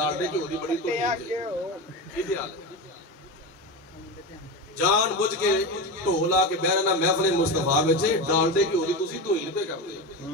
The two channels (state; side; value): normal; both; correlation 0.21